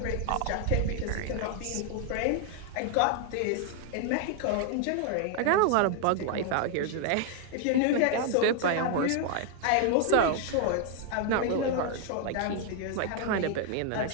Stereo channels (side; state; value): both; different; correlation 0.00